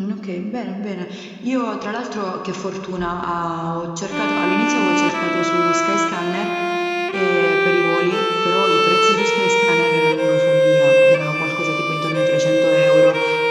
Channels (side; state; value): both; identical; correlation 1.00